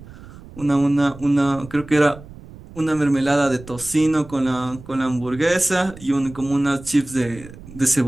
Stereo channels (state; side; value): noise; right; rumble, 18 dB below the sound